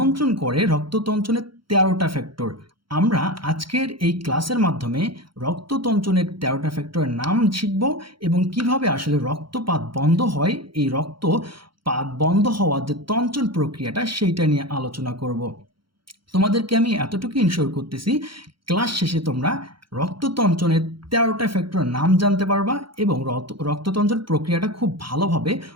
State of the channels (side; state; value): left; late; 0.73 ms